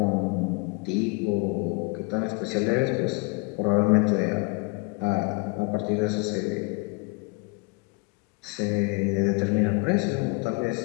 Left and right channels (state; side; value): quieter; right; 30.2 dB